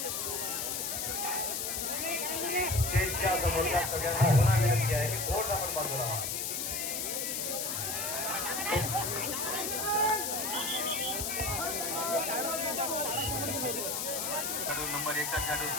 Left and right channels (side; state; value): left; noise; hiss, 1 dB below the sound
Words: स्टेजच्या समोरच्या सगळ्यांना पुन्हा विनंती आहे की थोडं आपण बाजूला व्हा. नंबर 1चा खेळाडू